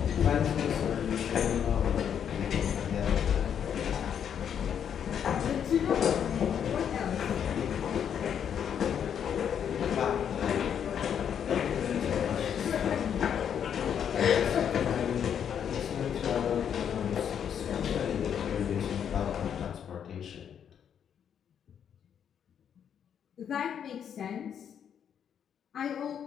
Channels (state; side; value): quieter; right; 8.4 dB